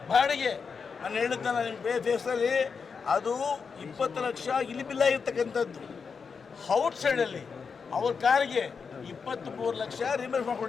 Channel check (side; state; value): right; quieter; 5.6 dB